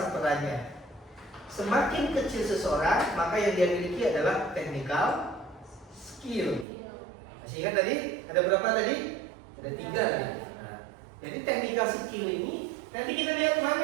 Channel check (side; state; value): left; drops out; at 6.7 s